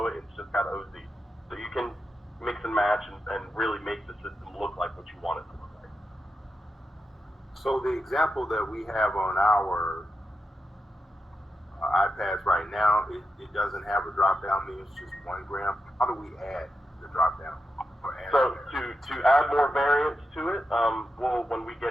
it, it's just got OZ. So you can mix and match and really make the system look like what you want it to look like. So the example that we have on our iPads right now, it doesn't have a drop-down menu. It's just 1 gram. How do we add the drop-down? So to add more variants to it, when we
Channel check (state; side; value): normal; both; correlation 0.88